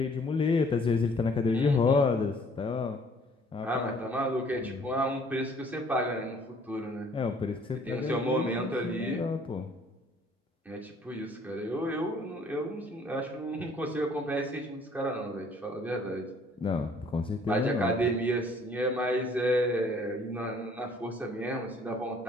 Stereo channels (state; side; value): normal; both; correlation 0.58